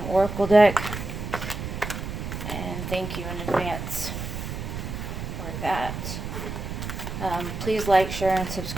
Oracle deck. And thank you in advance for that. Please like, share, and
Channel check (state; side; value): noise; right; rumble, 6 dB below the sound